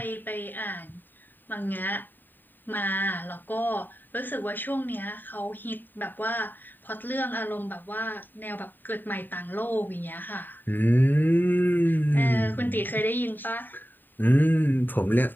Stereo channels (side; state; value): right; late; 0.091 ms